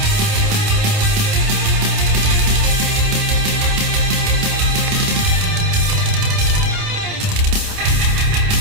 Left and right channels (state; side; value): late; left; 28 ms